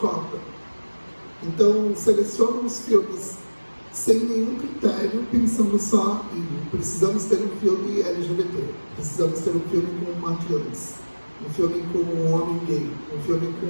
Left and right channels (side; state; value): both; inverted; correlation -1.00